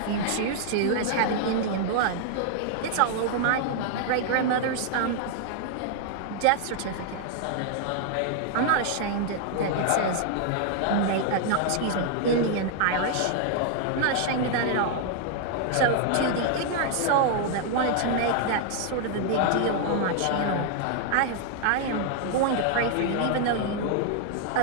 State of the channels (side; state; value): both; different; correlation 0.00